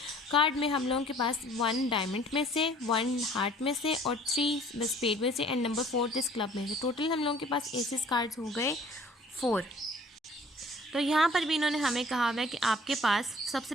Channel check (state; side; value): normal; both; correlation 0.53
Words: कार्ड में हम लोगों के पास 1 डायमंड में से, 1 हार्ट में से और 3 स्पेड में से एंड नंबर 4 इस क्लब में से। टोटल हम लोगों के पास एसेस कार्ड्स हो गए 4। तो यहाँ पर भी इन्होंने हमें कहा हुआ है कि आपके पास